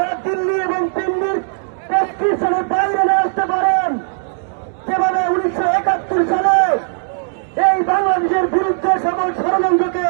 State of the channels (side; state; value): left; silent; digital silence